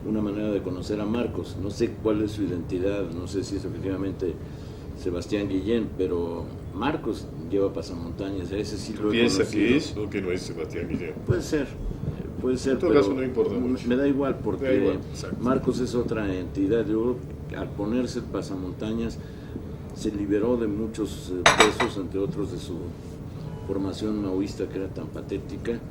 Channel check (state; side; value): identical; both; correlation 1.00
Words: una manera de conocer a Marcos. No sé cuál es su identidad, no sé si es efectivamente Sebastián Guillén, pero Marcos lleva pasamontañas, a ese sí lo he ¿Piensa conocido. que es o que no es Sebastián Guillén? Puede ser, En todo pero caso no importa mucho. me da igual porque Da igual, exacto. Marcos es otra entidad. Yo, al ponerse el pasamontañas, se liberó de muchos pesos, entre otros de su formación maoísta que era tan patética,